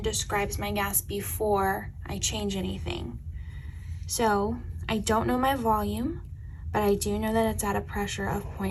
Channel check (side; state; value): both; identical; correlation 1.00